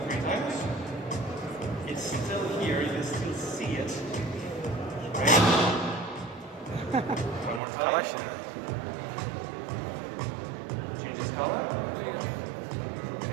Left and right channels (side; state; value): left; drops out; at 7.6 s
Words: 3 times. It's still here, you can still see it. Right? One more time. Change its color.